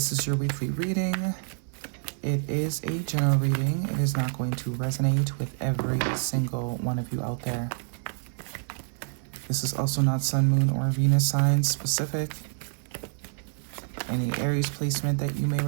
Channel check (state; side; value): silent; left; digital silence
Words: is your weekly reading. It is a general reading. It is not going to resonate with every single one of you out there. This is also not Sun, Moon, or Venus sign specific. Any Aries placement that you may